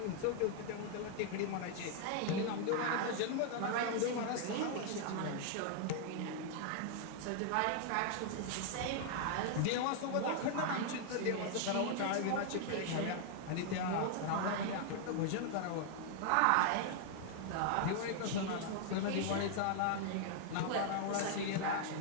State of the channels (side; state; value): both; different; correlation 0.00